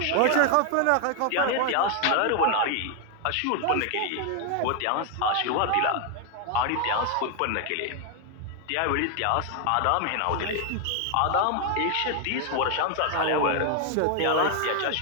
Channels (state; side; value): different; both; correlation 0.01